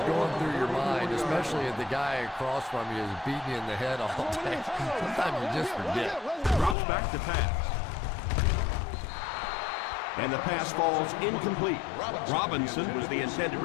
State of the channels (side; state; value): right; drops out; at 6.8 s